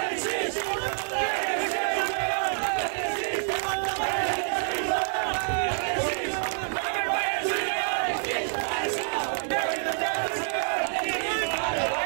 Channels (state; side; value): silent; left; digital silence